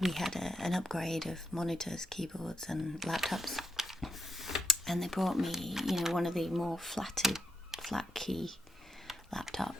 had an upgrade of monitors, keyboards and laptops, and they brought me, one of the more flat key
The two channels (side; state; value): both; normal; correlation 0.80